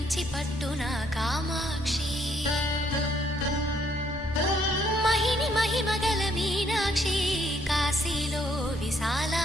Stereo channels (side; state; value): both; normal; correlation 0.69